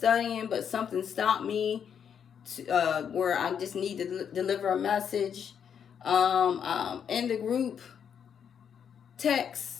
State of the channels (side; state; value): right; quieter; 7.9 dB